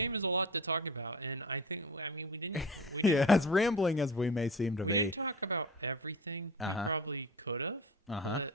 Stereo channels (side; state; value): both; normal; correlation 0.33